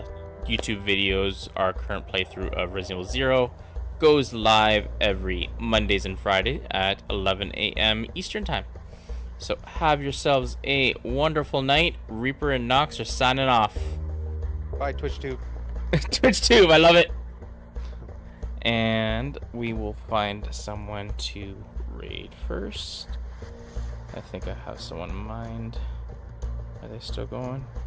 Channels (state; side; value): identical; both; correlation 1.00